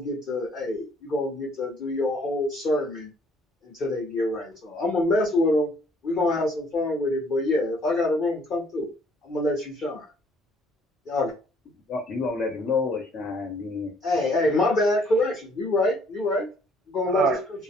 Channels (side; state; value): both; normal; correlation 0.62